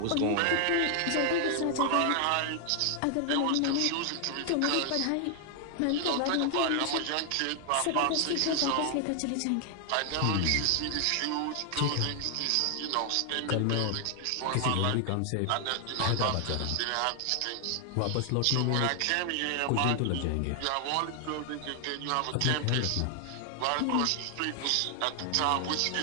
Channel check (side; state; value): both; different; correlation 0.00